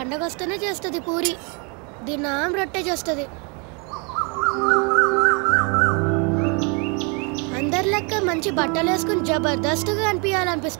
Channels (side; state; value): left; quieter; 33.7 dB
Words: వస్తేనే చేస్తుంది పూరి. దినం రొట్టె చేస్తుంది. అందరి లెక్క మంచి బట్టలు వేసుకుని జబర్దస్త్గా